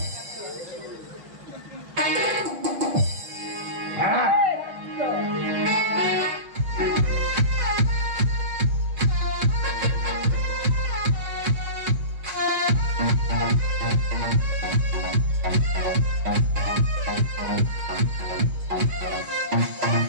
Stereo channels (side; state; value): left; late; 6.1 ms